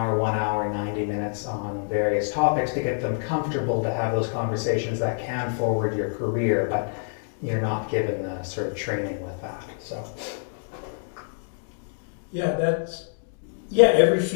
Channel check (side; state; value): right; silent; digital silence